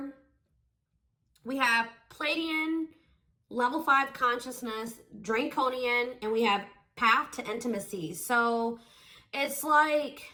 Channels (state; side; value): identical; both; correlation 1.00